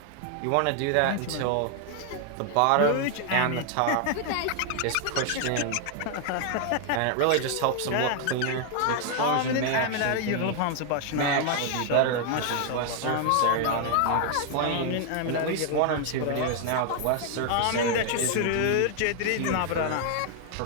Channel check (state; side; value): different; both; correlation 0.00